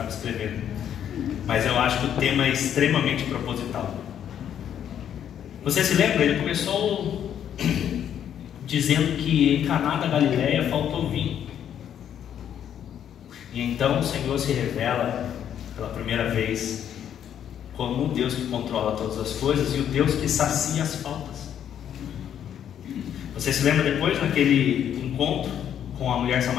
escrevendo, mas eu acho que o tema é extremamente proposital. Você se lembra? Ele começou dizendo que em Caná da Galileia faltou vinho. E então o Senhor se revela pela primeira vez como um Deus que controla todas as coisas e o Deus que sacia as faltas. Você se lembra depois naquele encontro com a mulher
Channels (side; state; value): right; quieter; 9.6 dB